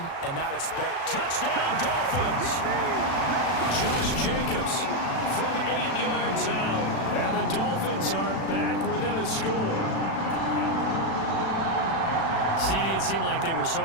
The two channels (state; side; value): late; right; 36 ms